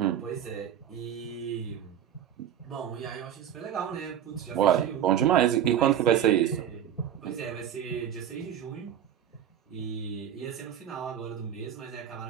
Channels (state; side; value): quieter; left; 9.8 dB